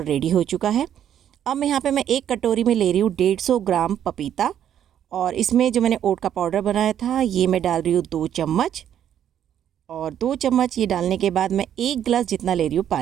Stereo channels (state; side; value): quieter; left; 10.0 dB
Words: रेडी हो चुका है। अब मैं यहाँ पे मैं एक कटोरी में ले रही हूँ 150 ग्राम पपीता, और इसमें जो मैंने ओट का पाउडर बनाया था ये मैं डाल रही हूँ 2 चम्मच। और 2 चम्मच ये डालने के बाद मैं 1 गिलास जितना ले रही हूँ